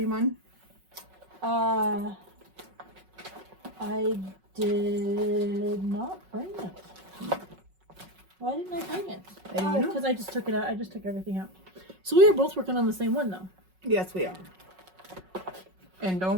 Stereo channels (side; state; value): left; late; 5.4 ms